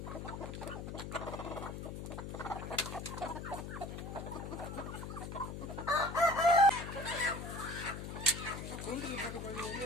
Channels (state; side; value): noise; left; hum, 7 dB below the sound